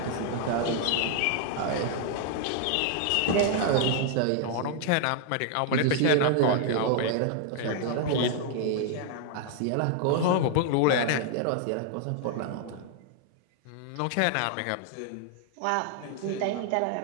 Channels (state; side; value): different; both; correlation 0.00